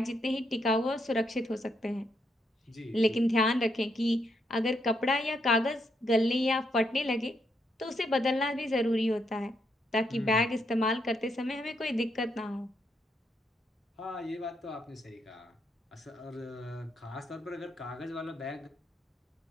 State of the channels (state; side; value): normal; both; correlation 0.78